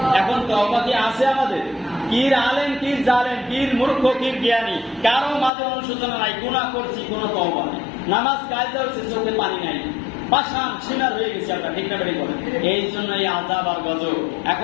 এখন তওবা কি আছে আমাদের? কির আলেম, কির জালেম, কির মূর্খ, কির জ্ঞানী, কারো মাঝে অনুশোচনা নাই। গুনাহ করছি, কোনো তওবা নাই। নামাজ কায়দা হচ্ছে, চোখে পানি নাই, পাষাণ সিনার হয়ে গেছে আমরা, ঠিক না বেঠিক বলেন? এই জন্য এই আযাব আর গজব।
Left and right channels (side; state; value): right; drops out; at 5.5 s